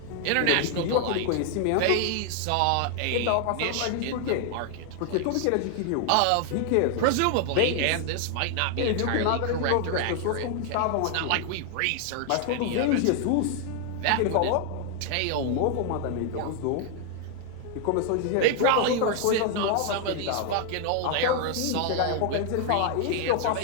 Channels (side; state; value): both; different; correlation 0.00